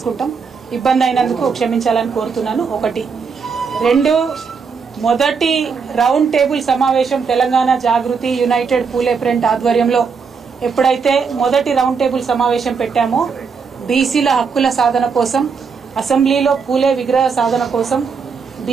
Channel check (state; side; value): quieter; left; 5.6 dB